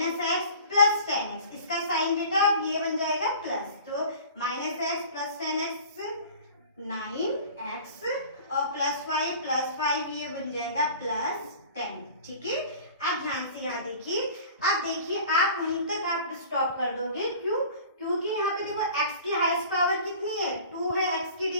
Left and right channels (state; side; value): inverted; both; correlation -0.43